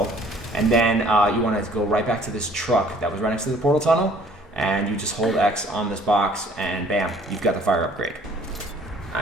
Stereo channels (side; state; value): both; normal; correlation 0.56